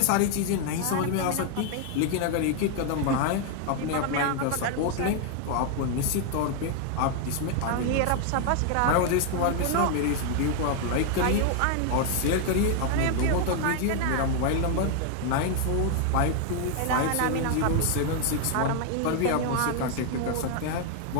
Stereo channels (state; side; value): different; both; correlation 0.00